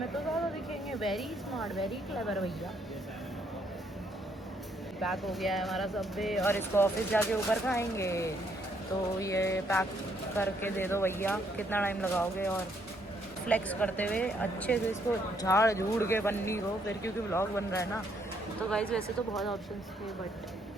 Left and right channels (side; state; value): both; normal; correlation 0.71